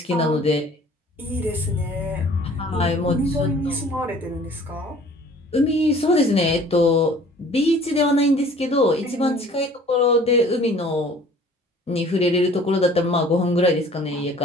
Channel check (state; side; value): normal; both; correlation 0.51